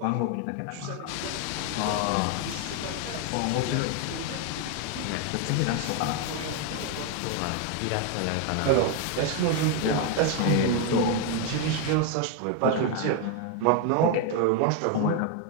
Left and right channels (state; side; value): different; both; correlation 0.01